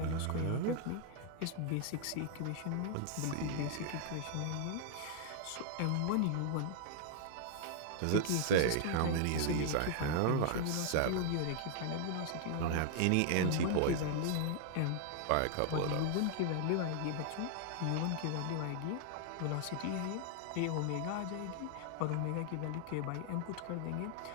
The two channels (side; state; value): both; different; correlation -0.01